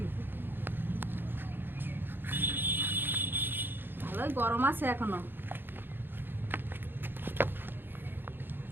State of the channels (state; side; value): late; left; 0.099 ms